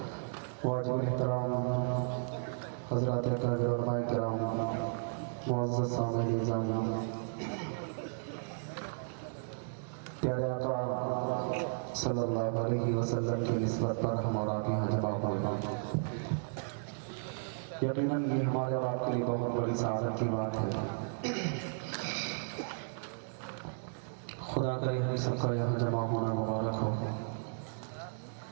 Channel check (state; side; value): silent; left; digital silence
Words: वाजिब एहतराम हज़रात अकाबिर उलमाए किराम, मुअज़्ज़ज़ सामईन निज़ाम, प्यारे आका सल्लल्लाहु अलैहि वसल्लम की निस्बत पर हम और आप यहाँ जमा हुए हैं। यकीनन ये हमारे और आपके लिए बहुत बड़ी सआदत की बात है। खुदा करे हम सबका यहाँ जमा होना मुबारक हो।